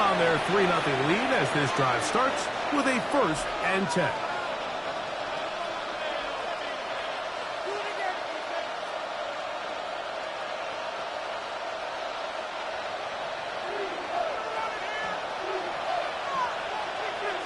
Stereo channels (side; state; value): both; identical; correlation 1.00